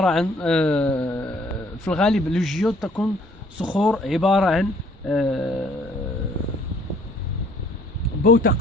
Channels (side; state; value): both; normal; correlation 0.61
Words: عن في الغالب الجيود تكون صخور عبارة عن